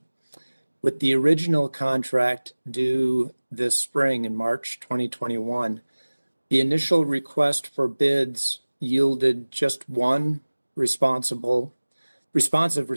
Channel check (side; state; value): both; inverted; correlation -1.00